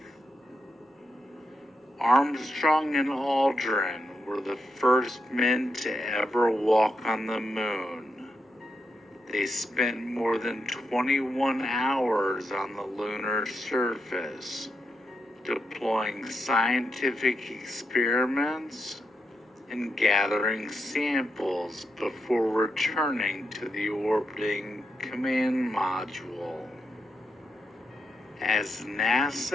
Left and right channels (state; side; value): normal; both; correlation 0.84